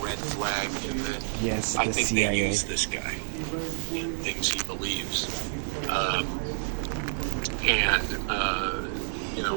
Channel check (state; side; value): silent; left; digital silence